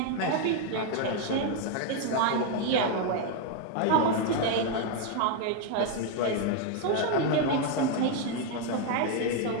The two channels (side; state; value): both; different; correlation 0.01